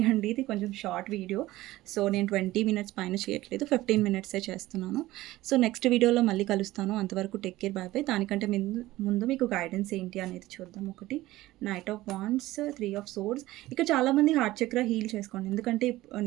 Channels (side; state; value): left; quieter; 17.1 dB